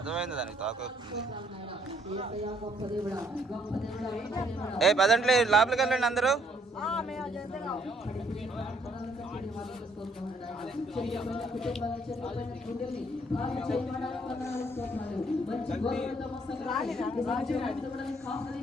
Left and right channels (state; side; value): normal; both; correlation 0.67